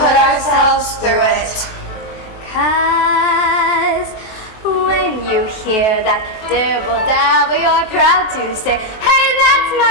ourselves through it? 'Cause when you hear that dibble-dabble, you're proud to say, hey, that's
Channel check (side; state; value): right; late; 23 ms